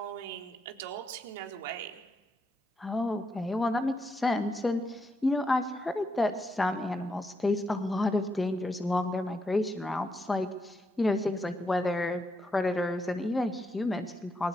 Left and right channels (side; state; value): both; normal; correlation 0.81